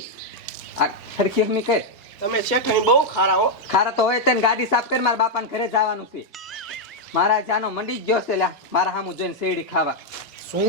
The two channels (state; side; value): normal; both; correlation -0.01